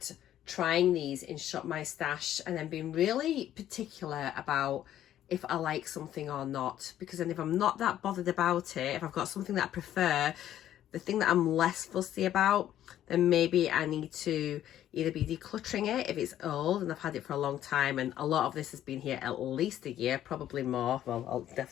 trying these in Shop My Stash and then being really particular about if I like something or not. Because then if I'm not that bothered about it, if I've got something that I prefer, the thing that I'm less fussy about, then maybe I need to either be decluttering it if it's old and I've had it for a long time, and a lot of this has been here at least a year, probably more, well,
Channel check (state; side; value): quieter; right; 11.8 dB